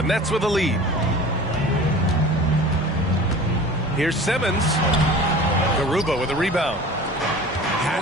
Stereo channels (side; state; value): both; normal; correlation 0.40